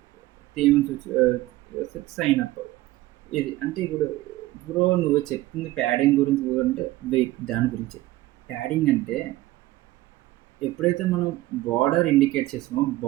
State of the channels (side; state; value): left; quieter; 17.4 dB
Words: థీమ్స్ సైన్ అప్. ఇది అంటే ఇప్పుడు నువ్వు చెప్తుంది ప్యాడింగ్ గురించి అంటే వెయిట్ దాని గురించి. ప్యాడింగ్ అంటే ఎప్పుడైతే మనం బార్డర్ ఇండికేట్ చేసామో